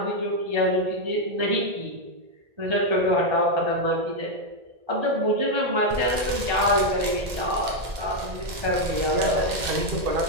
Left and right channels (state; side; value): late; left; 1.8 ms